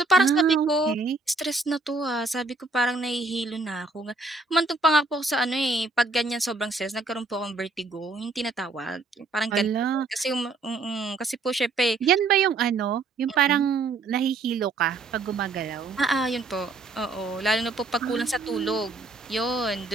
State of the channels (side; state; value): left; quieter; 3.5 dB